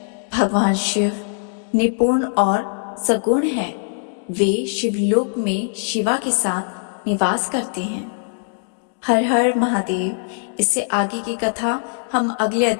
भगवान शिव निपुण और सगुण हैं। वे शिवलोक में शिवा के साथ निवास करते हैं। हर हर महादेव। इससे आगे की कथा हम अगले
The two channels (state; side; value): silent; right; digital silence